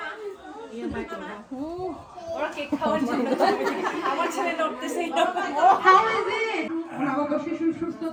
ওরা কেক খাওয়ার জন্য আমার ছেলে নড়তেছে। নবজাতক শিশুর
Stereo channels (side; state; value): both; identical; correlation 1.00